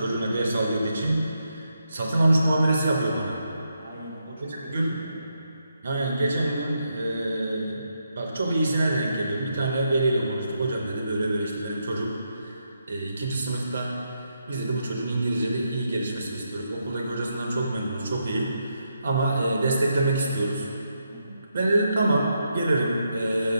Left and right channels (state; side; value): inverted; both; correlation -0.82